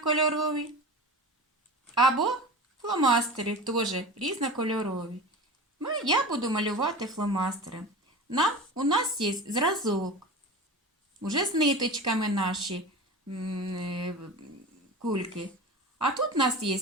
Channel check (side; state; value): both; normal; correlation 0.32